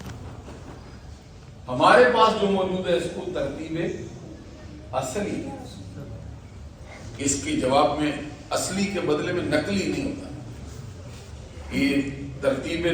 ہمارے پاس جو موجود ہے اس کو ترتیب اصلی ہے، اس کے جواب میں اصلی کے بدلے میں نقلی نہیں ہوتا۔ یہ ترتیب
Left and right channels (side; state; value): both; identical; correlation 1.00